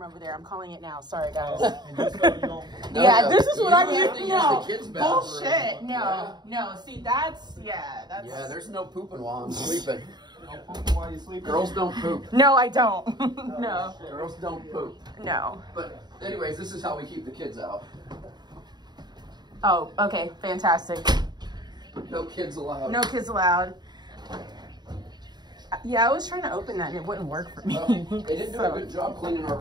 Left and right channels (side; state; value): left; late; 0.20 ms